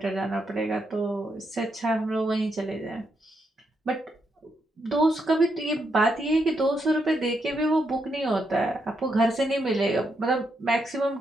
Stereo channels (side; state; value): both; normal; correlation 0.80